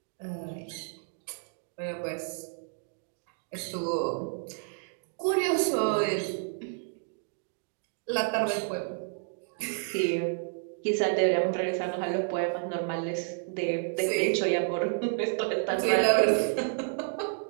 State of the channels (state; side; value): silent; left; digital silence